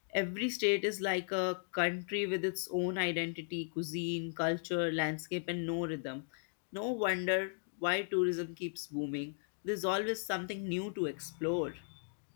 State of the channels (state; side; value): silent; right; digital silence